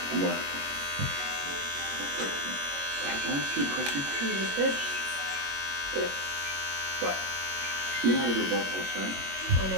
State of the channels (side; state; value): left; late; 21 ms